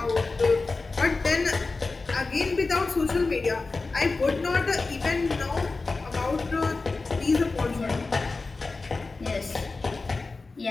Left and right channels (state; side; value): quieter; right; 3.8 dB